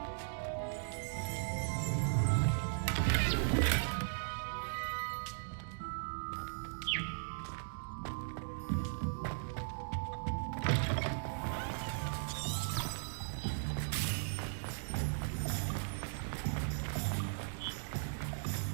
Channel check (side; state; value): left; silent; digital silence